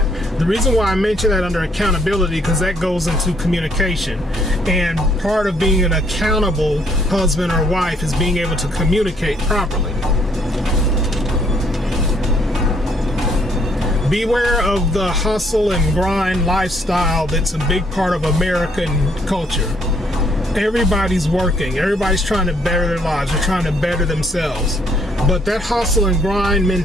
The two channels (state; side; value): normal; both; correlation 0.67